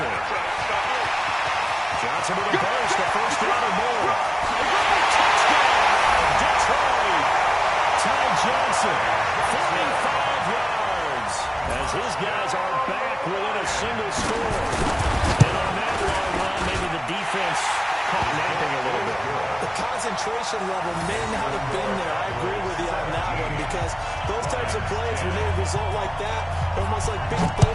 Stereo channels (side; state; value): both; identical; correlation 1.00